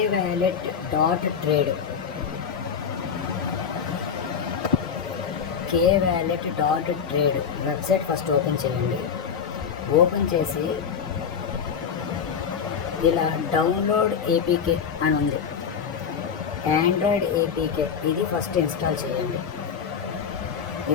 wallet dot trade K wallet dot trade website first open చేయండి. ఓపెన్ చేసి ఇలా డౌన్లోడ్ ఏపీకే అని ఉంది, ఆండ్రాయిడ్ ఏపీకే. ఇది ఫస్ట్ ఇన్స్టాల్ చేయండి.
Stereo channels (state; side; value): quieter; right; 7.0 dB